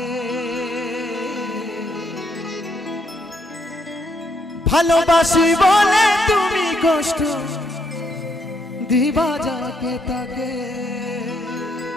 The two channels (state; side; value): normal; both; correlation 0.74